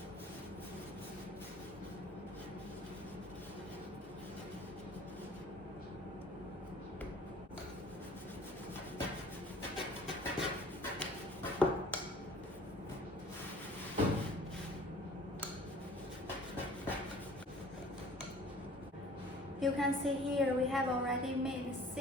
you can see here we have already made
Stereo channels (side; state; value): both; normal; correlation 0.50